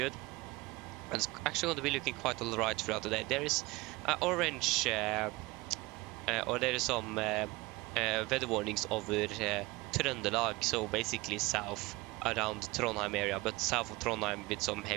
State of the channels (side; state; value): left; quieter; 22.1 dB